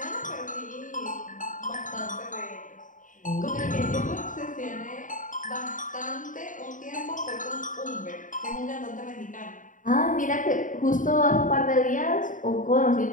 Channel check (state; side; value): late; right; 0.38 ms